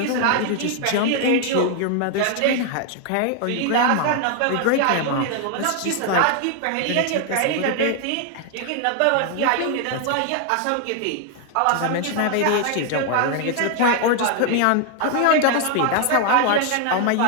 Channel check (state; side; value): different; both; correlation 0.00